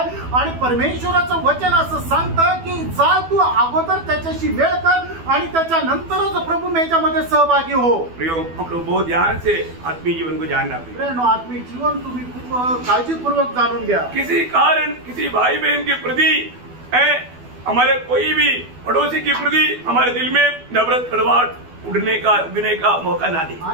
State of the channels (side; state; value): left; late; 12 ms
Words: आणि परमेश्वराचं वचन असं सांगतं की जा तू अगोदर त्याच्याशी वेळ कर आणि त्याच्यानंतरच प्रभुमेजामध्ये सहभागी हो। प्रियो, हम लोग बहुत ध्यान से आत्मीय जीवन को जानना पड़ेगा। प्रेरणा आत्मिक जीवन तुम्ही खूप काळजीपूर्वक जाणून घ्या। किसी कारण किसी भाई बहन के प्रति हमारे कोई भी पड़ोसी के प्रति हमारे दिल में नफरत कड़वाहट उगने का मौका ना दे।